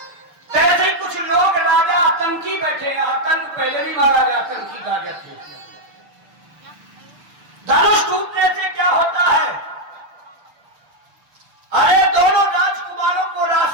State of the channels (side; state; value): left; late; 6.6 ms